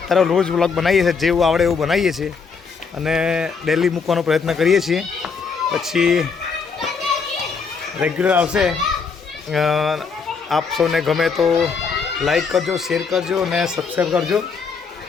રોજ વ્લોગ બનાવીએ છીએ, જેવું આવડે એવું બનાવીએ છીએ અને ડેલી મૂકવાનો પ્રયત્ન કરીએ છીએ. પછી રેગ્યુલર આવશે. આપ સૌને ગમે તો લાઈક કરજો, શેર કરજો અને સબસ્ક્રાઈબ કરજો.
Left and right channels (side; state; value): right; quieter; 5.3 dB